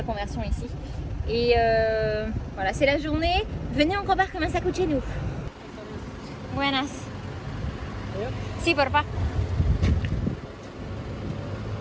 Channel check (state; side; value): identical; both; correlation 1.00